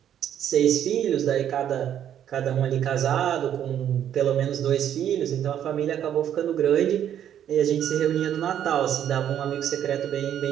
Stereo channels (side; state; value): left; quieter; 10.1 dB